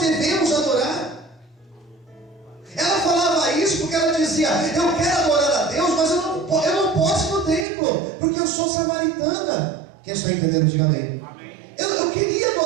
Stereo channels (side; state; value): left; drops out; at 7.7 s